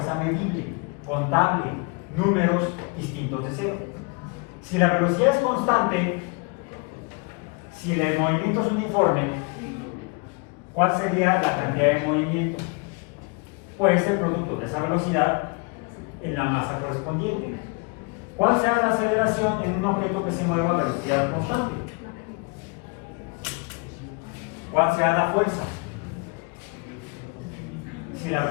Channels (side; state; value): right; quieter; 31.0 dB